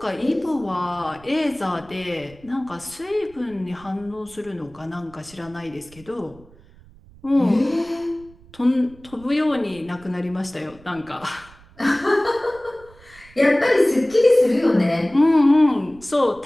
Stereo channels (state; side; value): noise; right; rumble, 24 dB below the sound